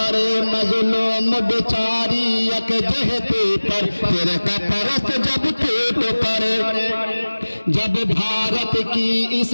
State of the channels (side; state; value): both; inverted; correlation -1.00